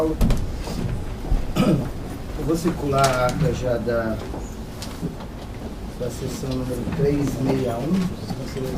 Eu vou circular a ata já da sessão número 361, se os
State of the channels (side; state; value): both; identical; correlation 1.00